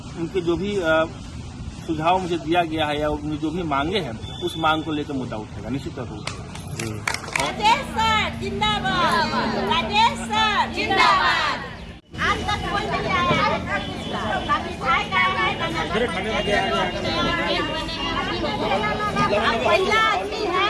जो भी सुझाव मुझे दिया गया है या उनकी जो भी मांगे हैं उस मांग को लेकर मुद्दा उठेगा, निश्चित तौर पर उठेगा। राजेश सर जिंदाबाद, राजेश सर जिंदाबाद। आज तक कोई नहीं आया पहला आदमी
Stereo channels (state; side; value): identical; both; correlation 1.00